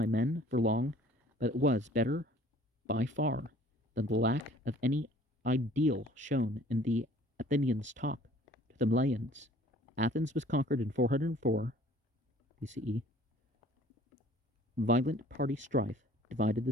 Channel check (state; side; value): normal; both; correlation 0.53